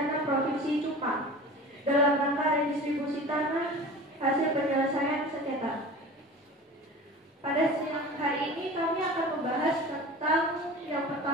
Provinsi Jepang dalam rangka redistribusi tanah hasil penyelesaian sengketa. Pada siang hari ini kami akan membahas tentang yang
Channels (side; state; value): both; normal; correlation 0.37